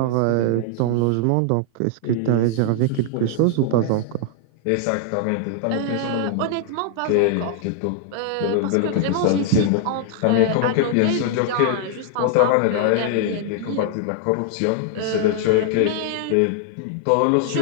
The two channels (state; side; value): different; both; correlation 0.00